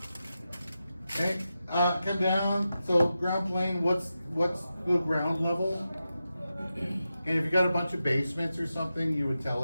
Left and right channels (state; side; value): inverted; both; correlation -0.91